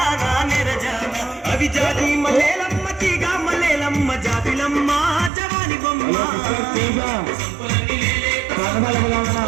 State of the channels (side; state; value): left; drops out; at 5.3 s